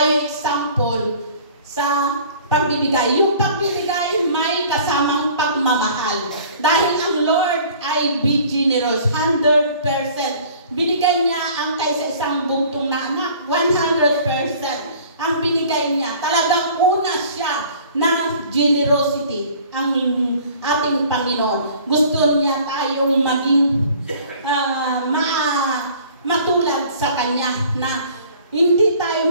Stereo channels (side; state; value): both; inverted; correlation -0.50